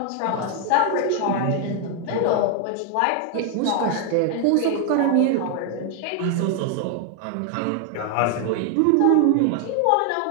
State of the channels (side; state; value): both; different; correlation 0.00